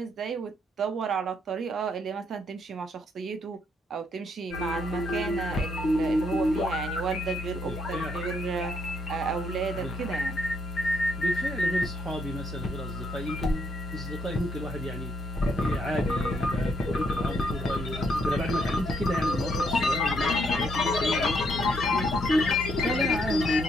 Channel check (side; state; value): both; normal; correlation 0.74